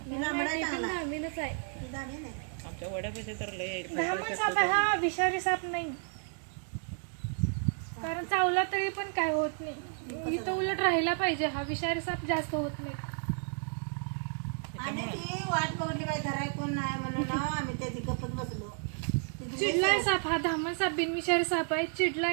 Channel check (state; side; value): silent; left; 56 dB below the other